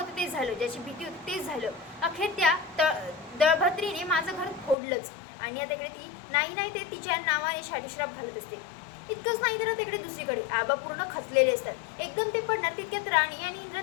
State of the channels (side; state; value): right; drops out; at 4.8 s